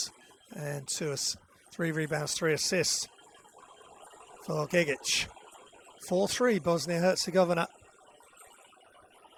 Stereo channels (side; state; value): both; identical; correlation 1.00